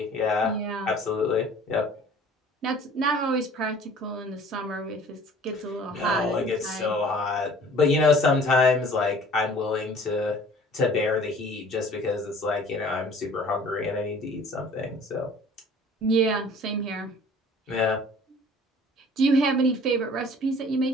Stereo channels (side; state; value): both; normal; correlation 0.49